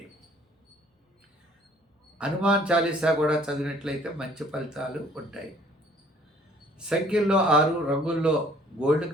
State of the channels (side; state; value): both; normal; correlation 0.57